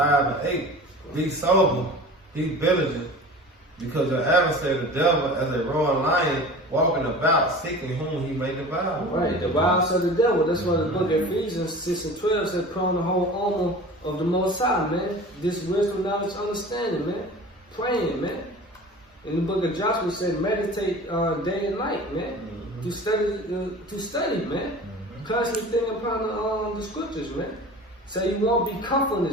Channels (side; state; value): both; normal; correlation 0.38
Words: Be sober, be vigilant, because your adversary, the devil, as a roaring lion, walking about, seeking whom he may devour. Right, the wiles of the devil. That's why the book of Ephesians 6:12 said, put on the whole armor of the Most High, man. This wisdom, knowledge, understanding, man. Praying, man. In the book of Joshua said, meditate day and night, man. To study, man. Constantly thinking upon the scriptures, man. So you won't be comfortable in